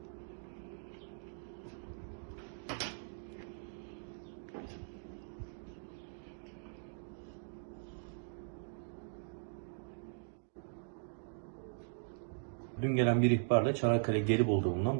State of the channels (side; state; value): left; silent; digital silence